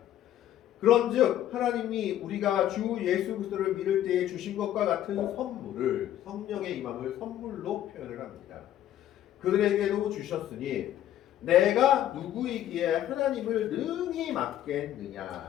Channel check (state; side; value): quieter; right; 12.0 dB